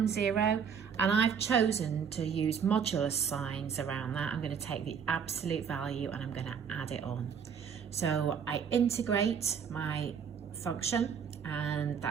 0, and I've chosen to use modulus signs around that. I'm going to take the absolute value and I'm going to add it on. So I integrate my function, and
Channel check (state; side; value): quieter; left; 7.1 dB